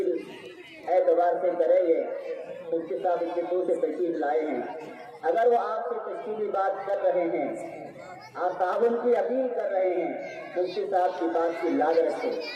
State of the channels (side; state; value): both; identical; correlation 1.00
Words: اعتبار سے کریں گے۔ مفتی صاحب اتنے دور سے تشریف لائے ہیں، اگر وہ آپ سے اس کی بھی بات کر رہے ہیں اور تعاون کی اپیل کر رہے ہیں، مفتی صاحب کی بات کی لاج رکھے،